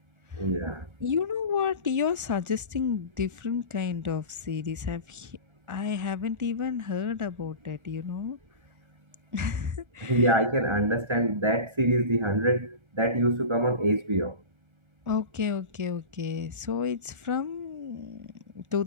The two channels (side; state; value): left; late; 1.4 ms